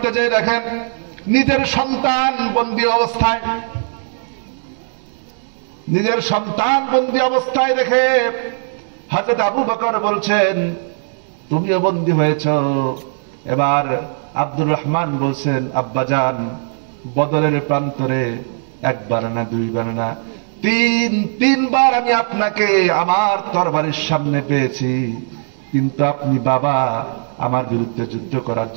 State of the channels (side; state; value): left; silent; digital silence